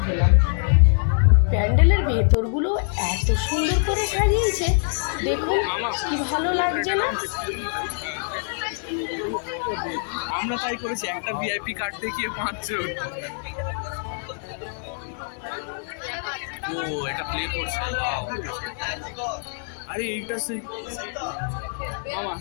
হলাম। প্যান্ডেলের ভেতরগুলো এত সুন্দর করে সাজিয়েছে, দেখুন কি ভালো লাগছে না? আমরা তাই করেছি, একটা ভিআইপি কার্ড দেখিয়ে 5 জন। ও এটা প্লে করছে, আরে এইটা সেই মামা,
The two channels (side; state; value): right; silent; digital silence